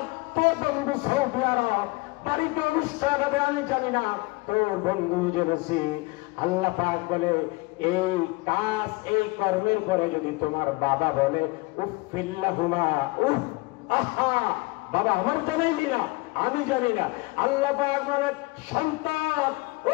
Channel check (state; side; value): quieter; right; 24.3 dB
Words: তোর বন্ধু সৌদি আরব, বাড়িতে অনুষ্ঠান হবে, আমি জানি না, তোর বন্ধু জেনেছি। আল্লাহ পাক বলে, এই কাজ, এই কর্মের পরে যদি তোমার বাবা বলে উফিল্লাহুমা, উফ, আহা, বাবা আমার জানাইলি না, আমি জানি না। আল্লাহ পাক বলে, সন্তান,